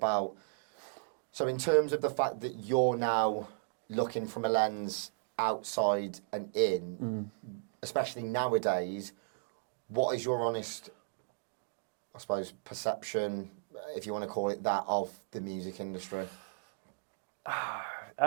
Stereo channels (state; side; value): silent; left; digital silence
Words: So in terms of the fact that you're now looking from a lens outside and in, especially nowadays, what is your honest, I suppose, perception, if you want to call it that, of the music industry?